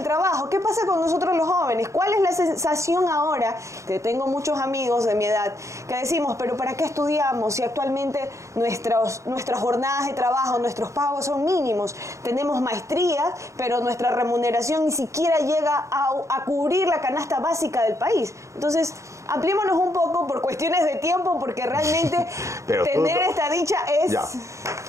trabajo. ¿Qué pasa con nosotros los jóvenes? ¿Cuál es la sensación ahora? Que tengo muchos amigos de mi edad que decimos, pero ¿para qué estudiamos si actualmente nuestras jornadas de trabajo, nuestros pagos son mínimos? Tenemos maestrías, pero nuestra remuneración ni siquiera llega a cubrir la canasta básica del país. Entonces, ampliémonos un poco por cuestiones de tiempo, porque realmente tener esta dicha es... Ya.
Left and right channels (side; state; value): left; late; 0.15 ms